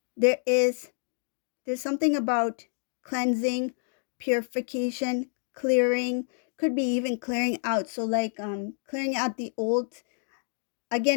there is there's something about cleansing, purification, clearing, could be even clearing out. So, like, clearing out the old.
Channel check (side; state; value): right; silent; digital silence